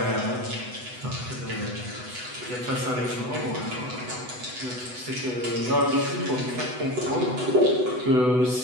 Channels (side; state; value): left; late; 8.0 ms